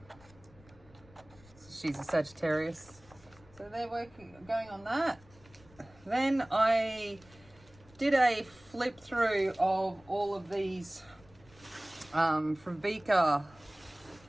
She's a Sagittarius, so they're going on that. Then I did a flip through of all of these from Vika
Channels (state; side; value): noise; left; rumble, 25 dB below the sound